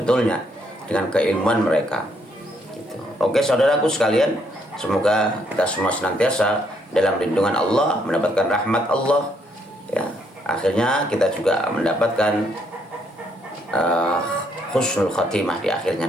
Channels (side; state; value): both; normal; correlation 0.71